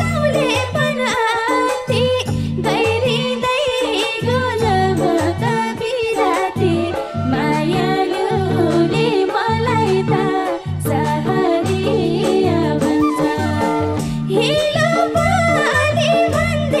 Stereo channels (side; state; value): right; noise; rumble, 28 dB below the sound